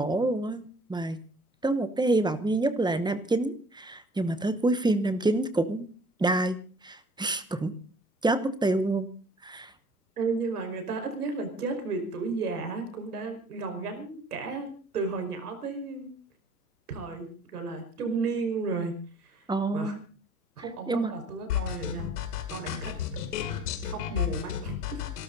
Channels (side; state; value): both; normal; correlation 0.53